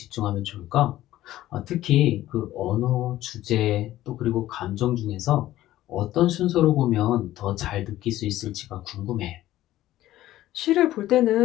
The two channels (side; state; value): right; quieter; 14.6 dB